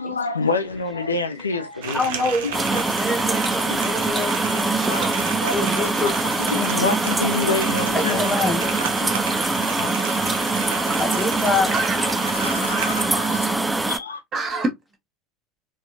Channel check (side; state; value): both; normal; correlation 0.55